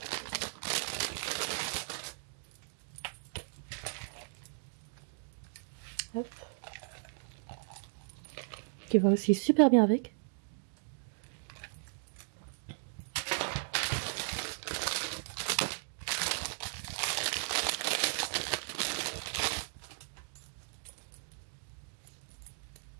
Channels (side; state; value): left; silent; digital silence